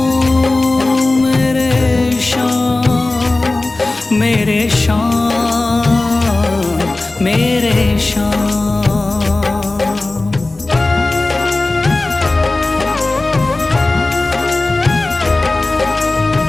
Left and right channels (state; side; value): quieter; right; 3.0 dB